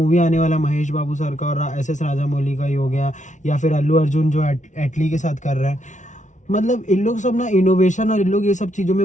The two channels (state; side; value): late; right; 0.36 ms